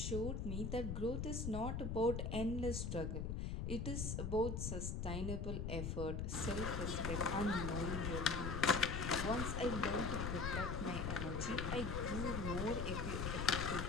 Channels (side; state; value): left; noise; rumble, 2 dB below the sound